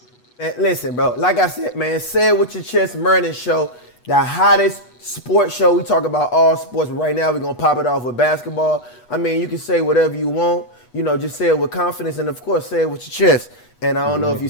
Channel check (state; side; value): late; right; 8.2 ms